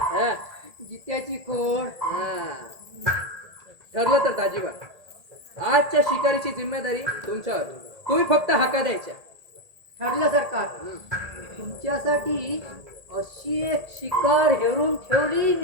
हा. जित्याची खोड. हा. ठरलं तर दाजीबा आजच्या शिकारीची जिम्मेदारी तुमच्यावर. तुम्ही फक्त हाका द्यायच्या. ठरलं सरकार. तुमच्यासाठी अशी एक शिकार हेरून ठेवली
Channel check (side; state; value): left; late; 1.8 ms